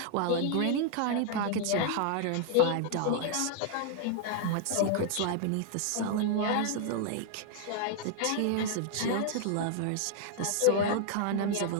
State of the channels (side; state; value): both; different; correlation -0.01